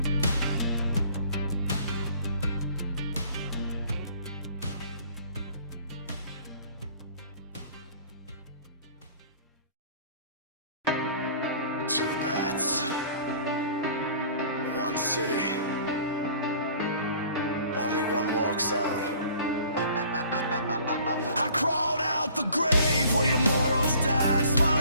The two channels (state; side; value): inverted; both; correlation -0.51